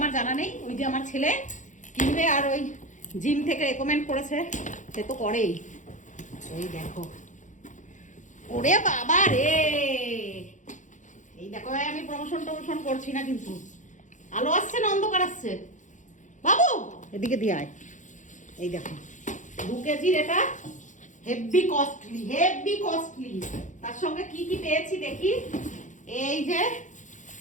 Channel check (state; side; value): late; right; 0.36 ms